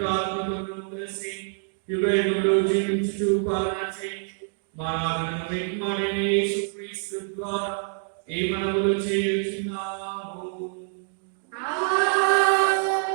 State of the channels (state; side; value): silent; left; 57 dB below the other